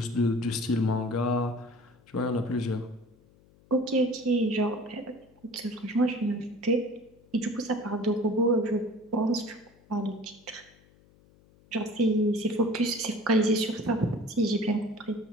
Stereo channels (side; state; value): left; noise; hum, 29 dB below the sound